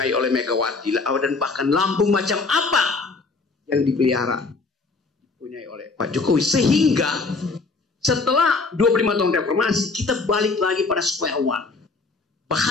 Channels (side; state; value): right; quieter; 4.0 dB